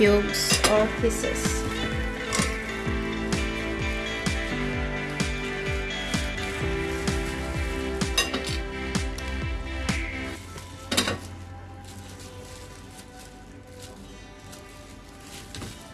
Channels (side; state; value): both; identical; correlation 1.00